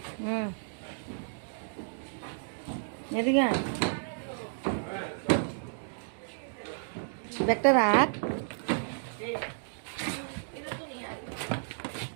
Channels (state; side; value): silent; left; digital silence